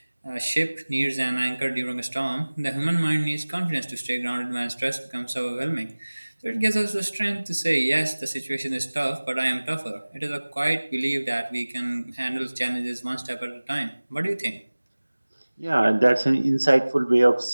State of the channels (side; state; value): both; inverted; correlation -1.00